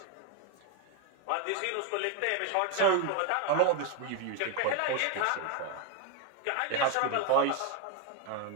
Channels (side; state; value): both; different; correlation 0.01